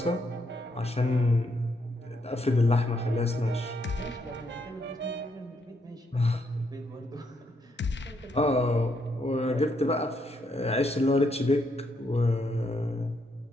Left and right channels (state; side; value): normal; both; correlation 0.76